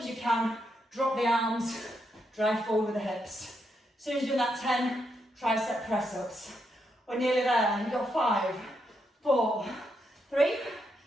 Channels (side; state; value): both; normal; correlation 0.81